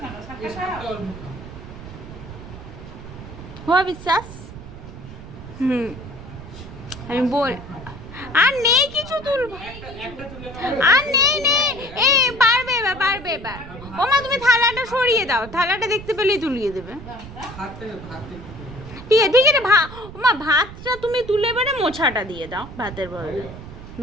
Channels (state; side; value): noise; right; rumble, 14 dB below the sound